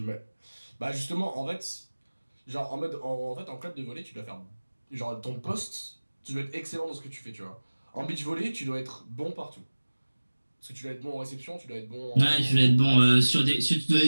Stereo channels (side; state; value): both; inverted; correlation -1.00